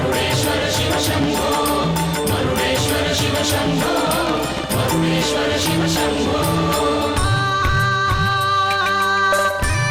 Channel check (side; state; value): both; identical; correlation 1.00